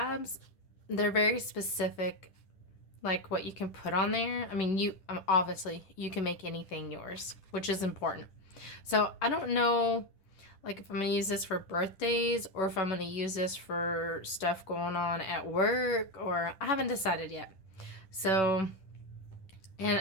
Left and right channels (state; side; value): late; right; 11 ms